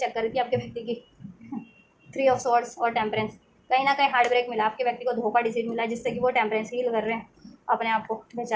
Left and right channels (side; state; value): both; identical; correlation 1.00